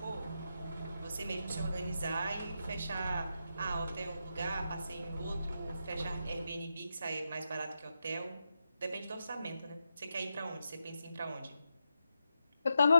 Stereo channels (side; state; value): both; inverted; correlation -0.86